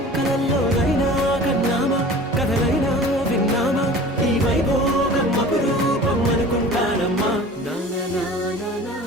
కలల్లోనైనా కన్నామా కథలైనా విన్నామా, ఈ వైభోగం అపురూపం అనుకుంటానమ్మా.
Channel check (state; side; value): normal; both; correlation 0.41